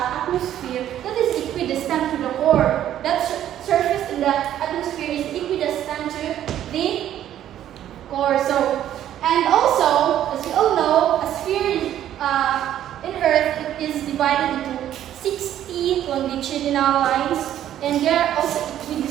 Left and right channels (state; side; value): quieter; left; 11.5 dB